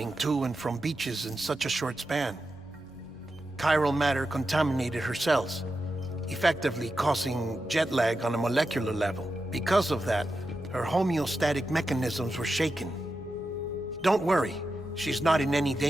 to and from beaches in such a short span. Chiral matter contaminated her cells, effectively causing jet lag on a molecular level. Because of that, her homeostatic mechanisms were shaken. Don't worry, she's not in any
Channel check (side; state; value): both; normal; correlation 0.90